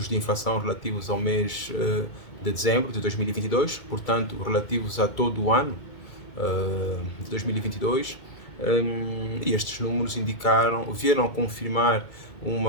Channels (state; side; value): late; right; 2.3 ms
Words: de inflação relativos ao mês de dezembro de 2022, portanto, relativos a todo o ano de 2022. E estes números vieram confirmar